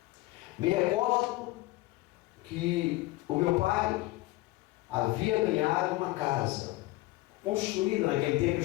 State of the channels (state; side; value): quieter; right; 19.3 dB